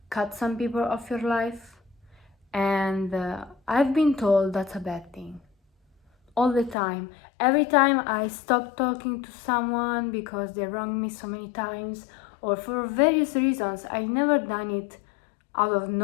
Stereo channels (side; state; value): right; drops out; at 6.8 s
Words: cut some people off your life, and I've been told that's a bad thing. All the time. Every time I stop talking to someone because they wronged me so many times, or for various reasons, I never done it out of